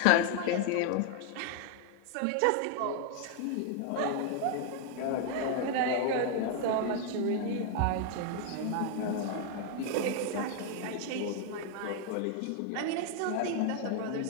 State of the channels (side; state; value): both; different; correlation 0.00